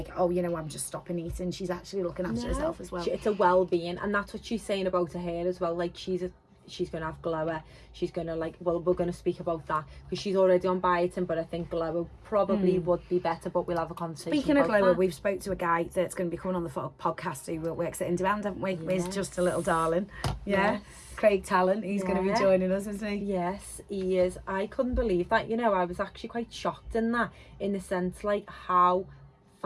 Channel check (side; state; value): both; identical; correlation 1.00